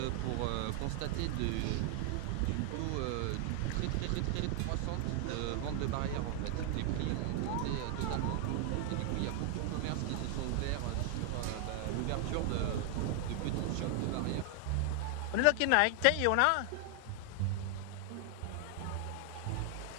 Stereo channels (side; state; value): both; different; correlation 0.00